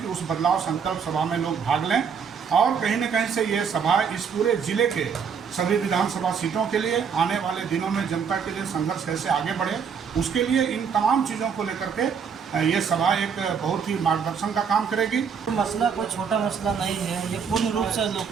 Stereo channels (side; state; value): left; quieter; 6.6 dB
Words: कि उस बदलाव संकल्प सभा में लोग भाग लें और कहीं न कहीं से ये सभा इस पूरे जिले के सभी विधानसभा सीटों के लिए आने वाले दिनों में जनता के लिए संघर्ष कैसे आगे बढ़े, उसके लिए इन तमाम चीज़ों को लेकर के ये सभा एक बहुत ही मार्गदर्शन का काम करेगी। मसला कोई छोटा मसला नहीं है, ये पूर्ण रूप से